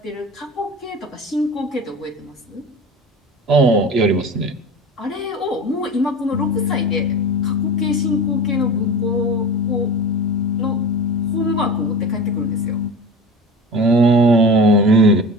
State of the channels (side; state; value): both; normal; correlation 0.33